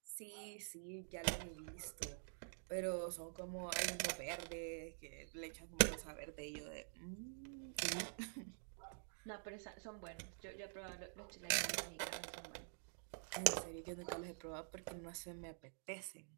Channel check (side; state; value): left; silent; digital silence